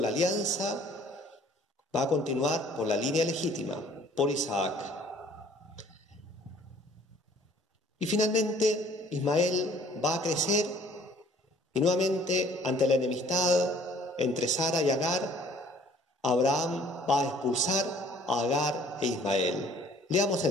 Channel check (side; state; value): both; normal; correlation 0.55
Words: alianza va a continuar por la línea legítima, por Isaac. Y finalmente Ismael va a crecer y nuevamente ante la enemistad entre Sara y Agar, Abraham va a expulsar a Agar e Ismael. Leamos